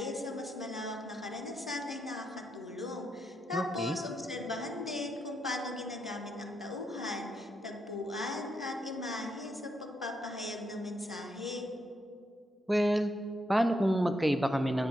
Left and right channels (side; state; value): both; normal; correlation 0.80